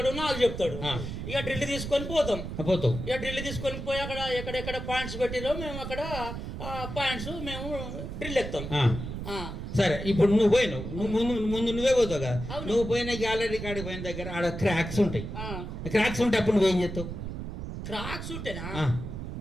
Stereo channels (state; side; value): noise; right; rumble, 7 dB below the sound